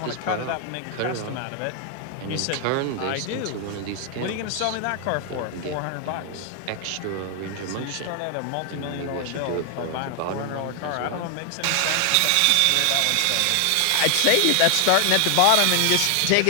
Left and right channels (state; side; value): different; both; correlation 0.00